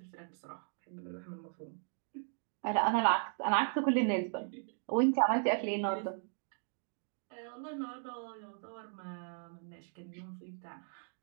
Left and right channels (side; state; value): left; silent; 53 dB below the other